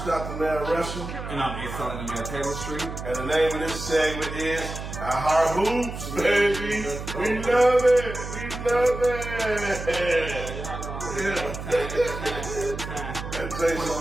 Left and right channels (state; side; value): noise; right; hum, 8 dB below the sound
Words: the man wrestling. And I'm A-Selling the man Taylor Street. And the name of this segment is Our Heart Hoops, baby. We love it. We love it. Yeah. That takes